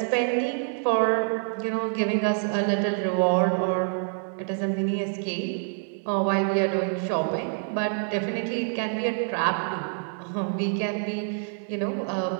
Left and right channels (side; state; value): left; silent; 60 dB below the other